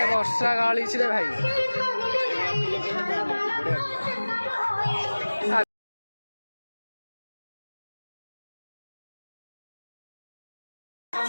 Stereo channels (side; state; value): both; inverted; correlation -1.00